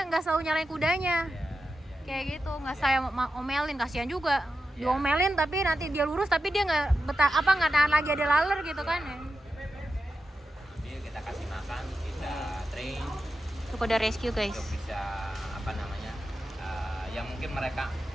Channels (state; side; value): normal; both; correlation 0.90